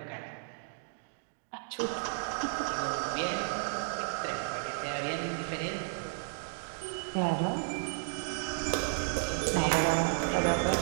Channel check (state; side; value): silent; left; digital silence